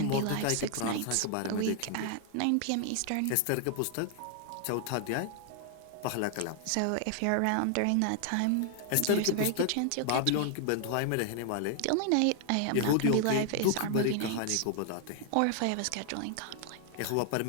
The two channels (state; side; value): different; both; correlation 0.00